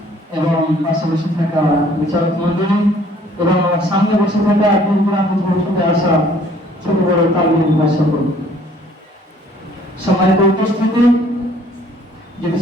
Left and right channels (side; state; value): both; normal; correlation 0.58